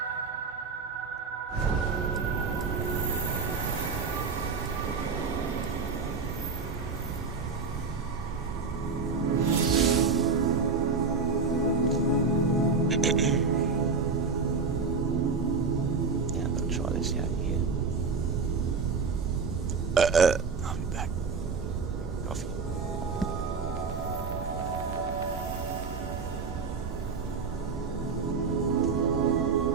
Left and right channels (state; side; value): quieter; left; 4.8 dB